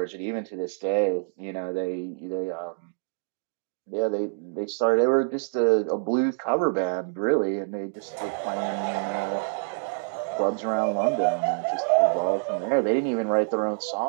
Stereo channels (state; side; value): silent; left; digital silence